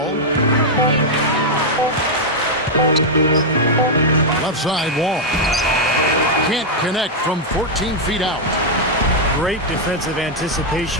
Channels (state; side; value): normal; both; correlation -0.02